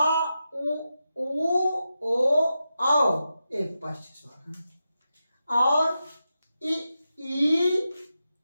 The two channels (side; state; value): both; inverted; correlation -0.89